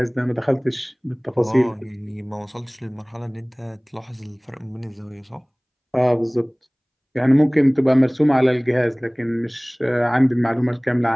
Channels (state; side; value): identical; both; correlation 1.00